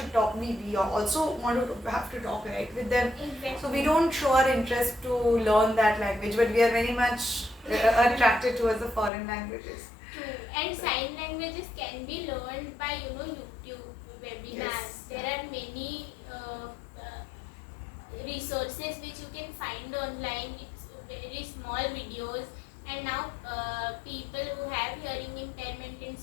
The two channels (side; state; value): right; drops out; at 9.1 s